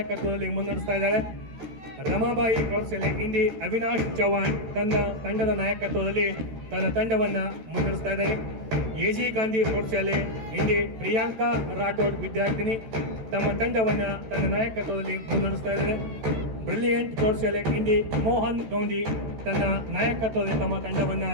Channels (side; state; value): left; late; 13 ms